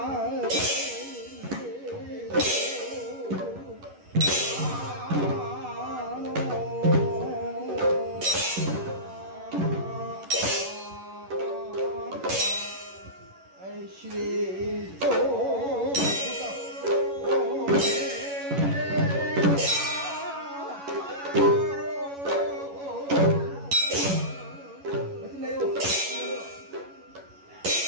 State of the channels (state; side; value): late; left; 11 ms